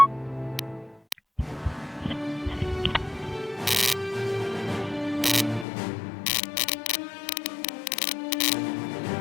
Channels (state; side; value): drops out; right; at 5.7 s